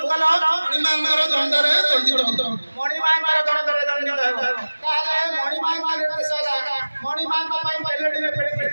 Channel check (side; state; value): both; inverted; correlation -1.00